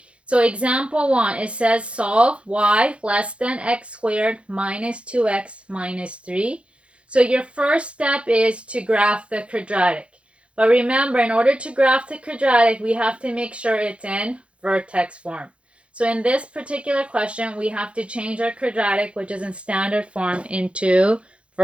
So example 1, it says solve y less than x squared minus 2x minus 3. So your first step is to graph the quadratic. But remember, in order to graph the quadratic, we have to make sure it's in vertex form. So in this particular question, we have to change our quadratic, which is in standard form, into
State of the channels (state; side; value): late; left; 0.060 ms